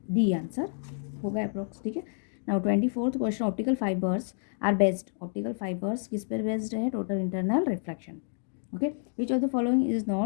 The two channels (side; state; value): right; silent; digital silence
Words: डी आंसर होगा अप्रोक्स। ठीक है, now 24th question, optical fibres are based. Optical fibres किस पर बेस्ड है? Total internal reflection. Okay, which of the following is